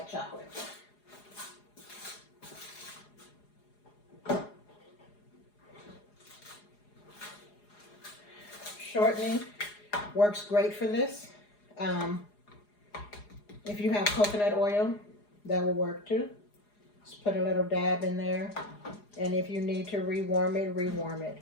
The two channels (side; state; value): right; late; 4.8 ms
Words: chocolate. Shortening works great for this. If you have coconut oil, that will work too. Just put a little dab in there. And if you need to rewarm it, rewarm it.